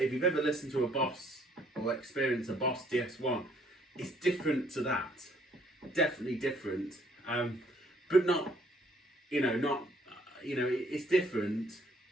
you've ever listened to a Boss or experienced a Boss DS1, it's different to that. Definitely different. But not, it's different.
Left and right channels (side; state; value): both; normal; correlation 0.64